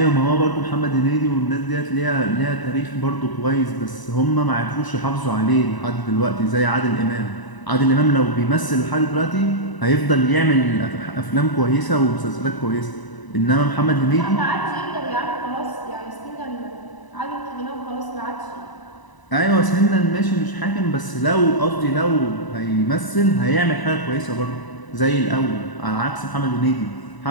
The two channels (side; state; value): right; late; 1.0 ms